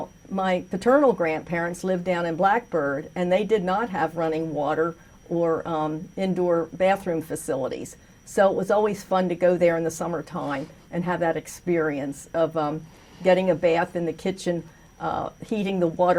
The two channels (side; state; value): both; identical; correlation 1.00